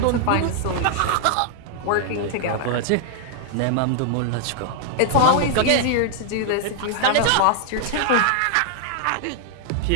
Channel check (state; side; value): different; both; correlation -0.01